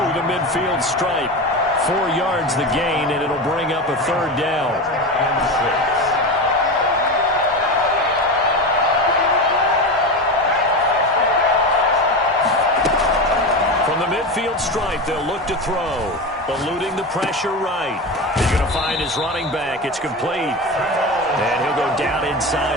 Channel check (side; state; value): both; normal; correlation 0.22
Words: the midfield stripe. 4 yards the gain, and it'll bring up a 3rd down. From From the midfield stripe, they'll look to throw. Eluding the pressure right. He's going to find his running back. It's complete. And he'll go down